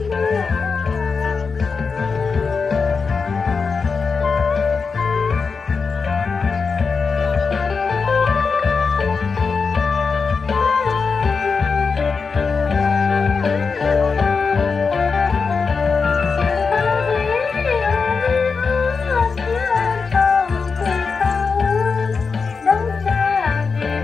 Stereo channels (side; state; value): right; quieter; 5.0 dB